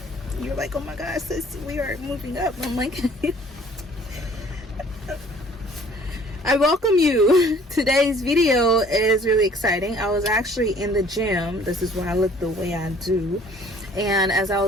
you're like, oh my gosh, sis, we are moving up, I'm like, I welcome you. Today's video is really exciting. I was actually in the gym. This is why I look the way I do. And as I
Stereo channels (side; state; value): both; normal; correlation 0.54